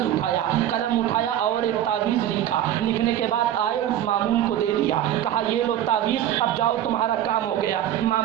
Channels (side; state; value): left; quieter; 11.5 dB